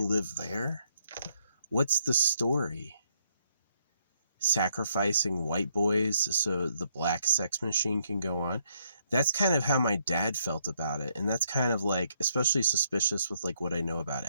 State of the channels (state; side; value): inverted; both; correlation -0.72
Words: live there? What's the story? Sacrificing white boys so the black sex machine can go on? That's kind of how my dad felt about it. And that's kind of like, especially suspicious with like what I know about